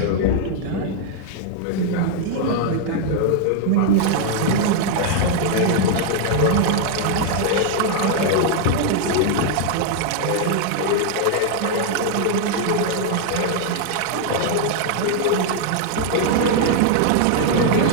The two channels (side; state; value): both; different; correlation 0.00